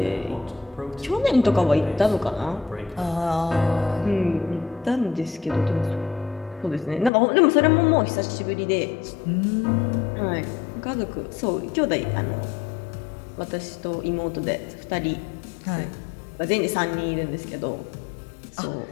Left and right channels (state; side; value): drops out; right; at 7.1 s